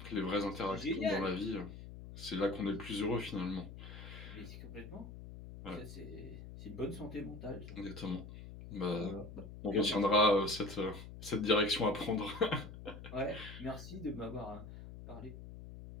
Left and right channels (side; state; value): left; noise; hum, 12 dB below the sound